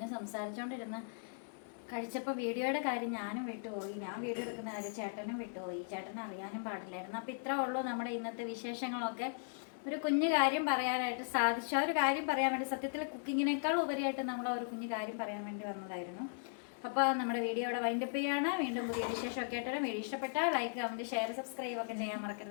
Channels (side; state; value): right; silent; 53 dB below the other